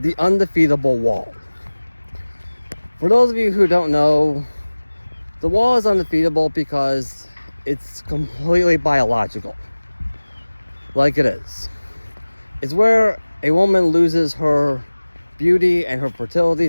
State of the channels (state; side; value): inverted; both; correlation -1.00